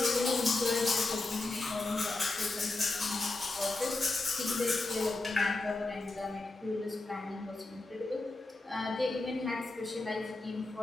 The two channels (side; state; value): right; quieter; 3.1 dB